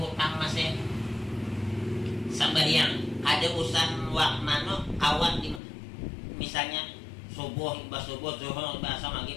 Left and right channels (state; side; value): drops out; right; at 5.6 s